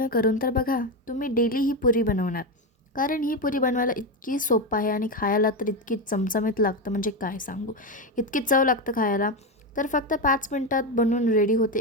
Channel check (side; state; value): both; normal; correlation 0.12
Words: करून तर बघा, तुम्ही डेली ही पुरी बनवणार। कारण ही पुरी बनवायला इतकी सोपं आहे आणि खायला तर इतकी चमचमीत लागतं, म्हणजे काय सांगू, इतकी चव लागतं खायला। तर फक्त 5 मिनिटात बनवून रेडी होते।